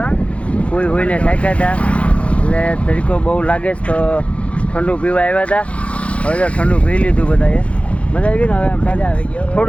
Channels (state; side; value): late; right; 0.062 ms